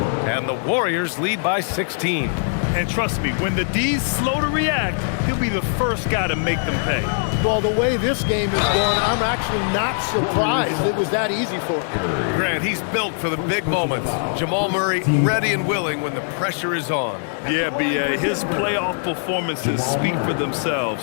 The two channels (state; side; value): silent; right; digital silence